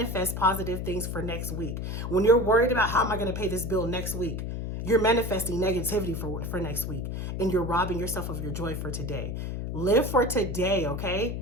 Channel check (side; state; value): left; noise; hum, 4 dB below the sound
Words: positive things for next week. When you're worried about how am I going to pay this bill next week, you're manifesting negativity for next week, and you're robbing yourself of your joy for today. Live for today, okay?